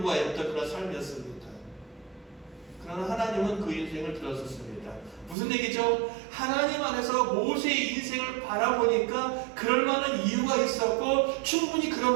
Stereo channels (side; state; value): left; drops out; at 5.4 s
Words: 그런 삶이었습니다. 그러나 하나님은 그 인생을 들어섰습니다. 무슨 얘기죠? 하나님 안에서 모세의 인생을 바라보니까 그럴 만한 이유가 있었고 충분히 그럴